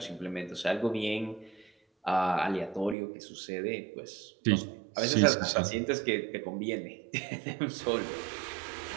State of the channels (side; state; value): left; drops out; at 3.0 s